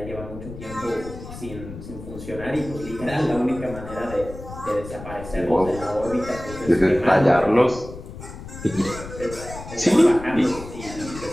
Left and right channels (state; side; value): noise; left; rumble, 12 dB below the sound